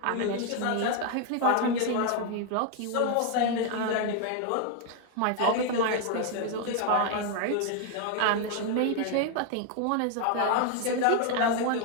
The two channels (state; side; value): different; both; correlation 0.00